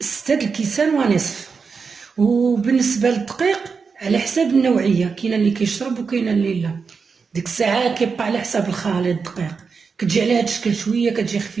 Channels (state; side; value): quieter; left; 5.3 dB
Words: 6 الكيسان ونصف. وبالنسبه للدقيق على حساب النوعيه، كاين اللي كيشرب وكاين اللي لا. ديك الساعه كيبقى على حساب الخليط الدقيق، كتجي على هاد الشكل شويه كتجي